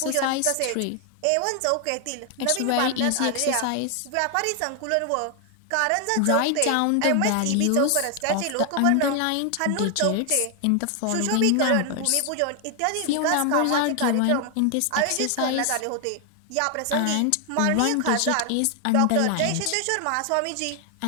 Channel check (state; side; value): different; both; correlation 0.00